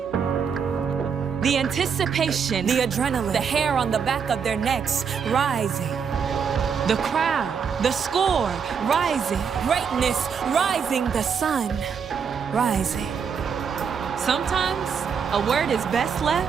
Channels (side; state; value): left; quieter; 6.7 dB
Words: The anticipation, the adrenaline, the hair on the back of their necks rising. The crowd, the score, rising. Greatness, rising. The sun, rising. Sometimes a word is best